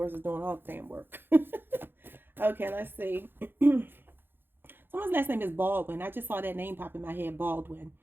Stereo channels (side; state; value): left; late; 0.10 ms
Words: is doing all the damn work. Okay, let's see. Someone's last name is Baldwin. I just saw that name pop in my head, Baldwin.